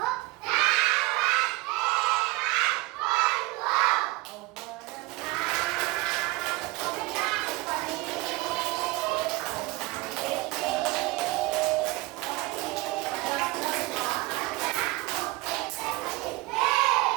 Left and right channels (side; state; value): left; quieter; 20.9 dB